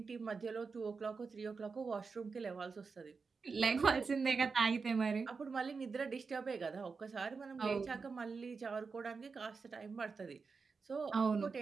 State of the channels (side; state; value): left; quieter; 4.9 dB